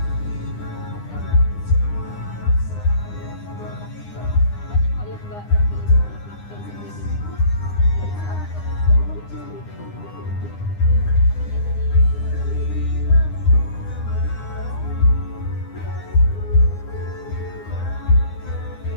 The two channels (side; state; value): right; late; 9.8 ms